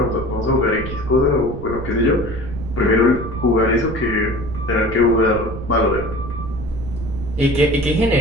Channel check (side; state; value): right; noise; rumble, 9 dB below the sound